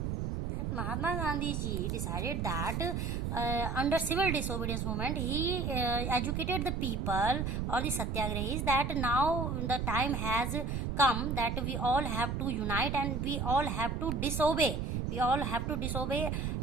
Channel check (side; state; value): right; noise; rumble, 1 dB below the sound